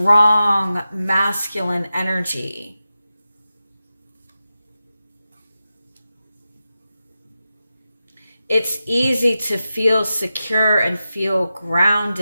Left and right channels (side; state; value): both; inverted; correlation -0.92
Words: masculine energy. It's easy to feel secure and feel